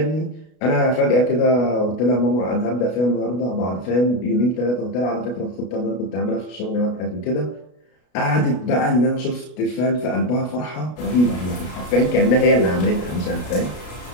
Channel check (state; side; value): late; right; 33 ms